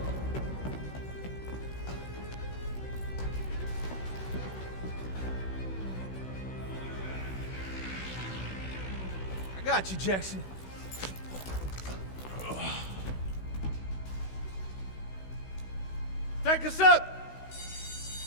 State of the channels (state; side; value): late; right; 16 ms